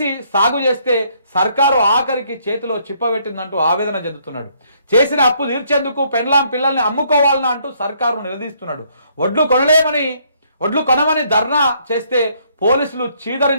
సాగు చేస్తే సర్కారు ఆఖరికి చేతిలో చిప్పబెట్టిందంటూ ఆవేదన చెందుతున్నాడు. చేసిన అప్పు తీర్చేందుకు పెన్లాం పిల్లల్ని అమ్ముకోవాలని అంటూ సర్కారు నిలదీస్తున్నాడు. వడ్లు కొనమని ధర్నా చేస్తే పోలీసులు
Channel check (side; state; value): both; inverted; correlation -0.68